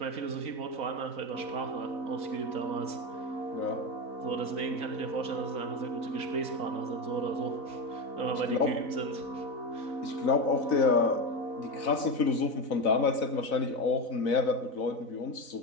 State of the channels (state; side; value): late; right; 4.0 ms